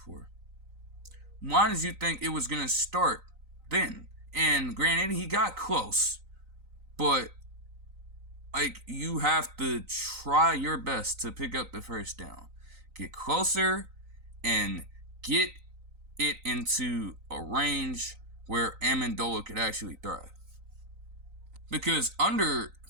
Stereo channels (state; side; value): late; left; 3.9 ms